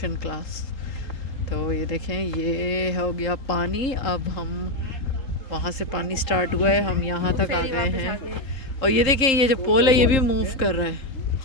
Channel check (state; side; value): late; right; 3.7 ms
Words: class. तो ये देखें, ये हो गया पानी. अब हम वहाँ से पानी स्टार्ट हुआ है, हम यहाँ तक आ गए हैं. और ये देखें, ये जो पोल है ये भी मूव कर रहा है.